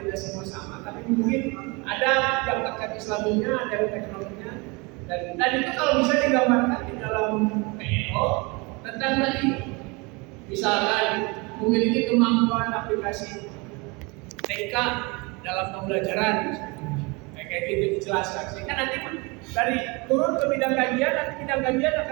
tidak semua sama, tapi mungkin ada yang terkait Islaminya, ada yang teknologinya, dan itu kalau bisa digambarkan di dalam PO tentang tadi, misalkan memiliki kemampuan aplikasi TK dalam pembelajaran, kayak gitu dijelaskan. Sehingga nanti dari turun ke bidang kajian, nanti bidang kajian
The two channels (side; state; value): left; quieter; 27.6 dB